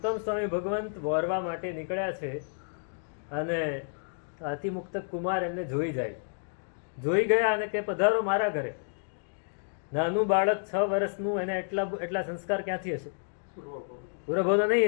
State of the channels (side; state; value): right; silent; digital silence